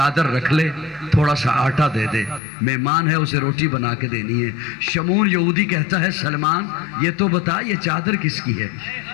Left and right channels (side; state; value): right; drops out; at 2.4 s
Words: رکھ لے، تھوڑا سا آٹا دے دے، مہمان ہے اسے روٹی بنا کے دینی ہے۔ شمون یہودی کہتا ہے سلمان یہ تو بتا یہ چادر کس کی ہے؟